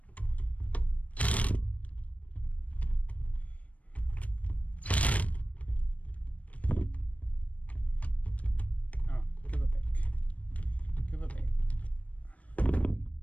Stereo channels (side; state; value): right; late; 0.067 ms